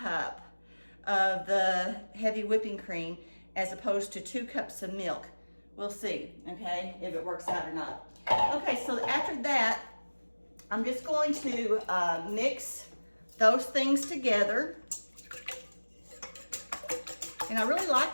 of the heavy whipping cream as opposed to 2 cups of milk. We'll see, okay, if it works out or not. Okay, so after that, I'm just going to mix those things together. And I really like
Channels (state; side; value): inverted; both; correlation -1.00